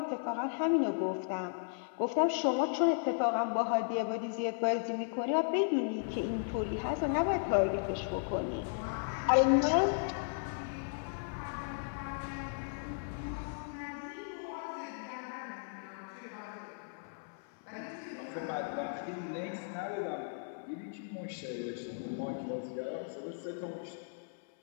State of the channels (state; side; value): silent; right; 54 dB below the other